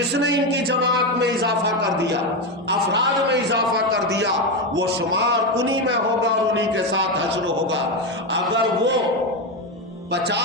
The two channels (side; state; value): both; normal; correlation 0.12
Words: نے ان کی جماعت میں اضافہ کر دیا، افراد میں اضافہ کر دیا، وہ شمار انہی میں ہوگا اور انہی کے ساتھ حشر ہوگا۔ اگر وہ